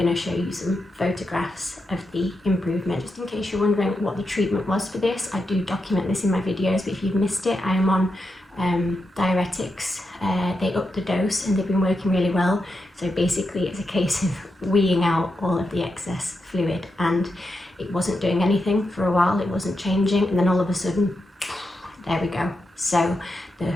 to show you some photographs of the improvement. Just in case you're wondering what the treatment was for this, I do document this in my videos, but if you've missed it, I am on diuretics. They upped the dose and they've been working really well. So basically it's a case of weeing out all of the excess fluid, and it wasn't doing anything for a while, it wasn't changing, and then all of a sudden, there we go. So the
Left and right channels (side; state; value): both; normal; correlation 0.86